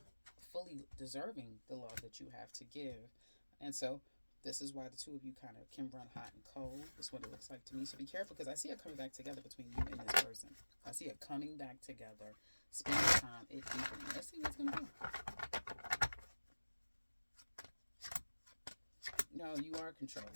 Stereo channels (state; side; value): inverted; both; correlation -1.00